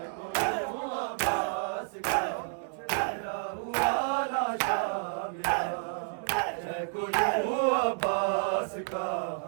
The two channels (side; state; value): left; silent; digital silence